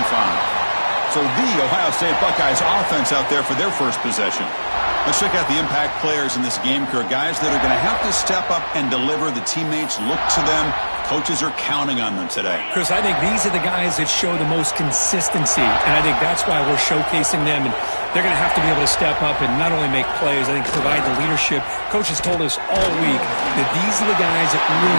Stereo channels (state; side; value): inverted; both; correlation -1.00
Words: So the Ohio State Buckeyes offense out there for their first possession. Let's check out the impact players in this game, Kirk. Guys that are going to have to step up and deliver. The teammates look to them. Coaches are counting on them today. Chris, I think these are the guys that show the most consistency, and I think that's why we're showcasing them. And they're going to have to be able to step up and not only make plays, I think provide the leadership. Coaches told us all week that these are the guys that